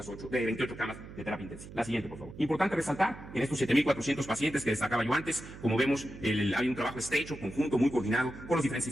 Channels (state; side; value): noise; right; hum, 15 dB below the sound